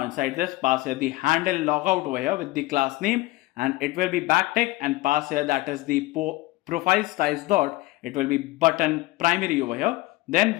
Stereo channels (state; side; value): quieter; right; 19.9 dB